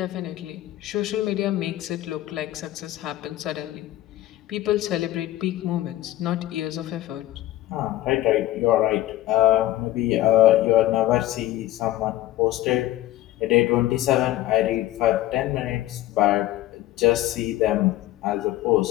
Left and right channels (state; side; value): quieter; right; 15.0 dB